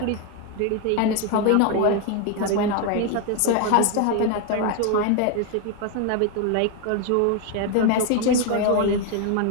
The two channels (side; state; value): both; different; correlation 0.01